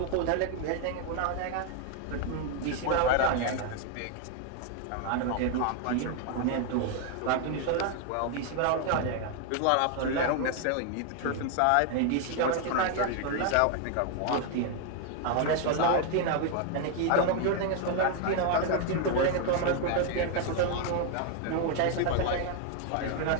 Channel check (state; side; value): different; both; correlation 0.00